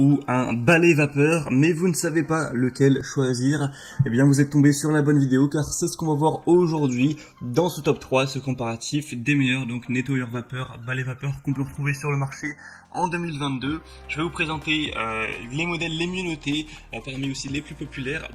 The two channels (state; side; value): identical; both; correlation 1.00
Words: un balai vapeur, mais vous ne savez pas lequel choisir, eh bien vous êtes tombé sur la bonne vidéo car c'est ce qu'on va voir aujourd'hui dans ce top 3, ce comparatif des meilleurs donc nettoyeurs vapeur, balai vapeur qu'on peut retrouver sur le marché en 2022. Je vais vous présenter les modèles les mieux notés, parmi aussi les plus populaires